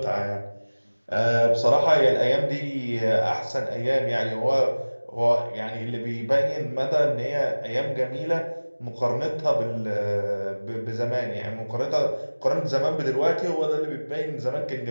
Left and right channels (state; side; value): inverted; both; correlation -1.00